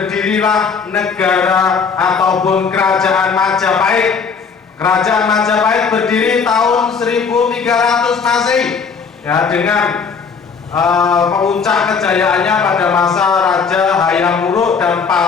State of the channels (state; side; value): quieter; right; 5.7 dB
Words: negara ataupun kerajaan Majapahit. Kerajaan Majapahit berdiri tahun 1300 Masehi, ya, dengan puncak kejayaannya pada masa Raja Hayam Wuruk dan